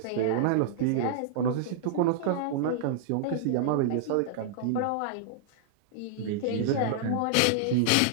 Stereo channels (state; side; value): different; both; correlation -0.01